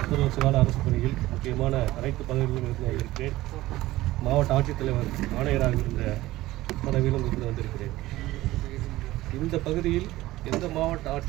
30 வருஷ கால அரசு பணியில் முக்கியமான அனைத்து பதவிகளிலும் இருந்து வந்திருக்கிறேன். மாவட்ட ஆட்சித்தலைவர் ஆணையராக இருந்த பதவியிலும் இருந்து வந்திருக்கிறேன். இந்த பகுதியில் எந்த மாவட்ட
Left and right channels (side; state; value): left; quieter; 17.0 dB